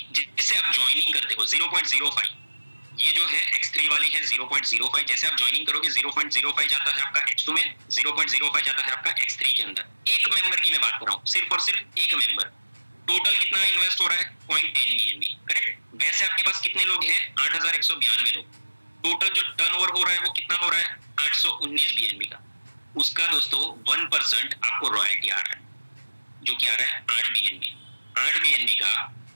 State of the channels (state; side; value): inverted; both; correlation -1.00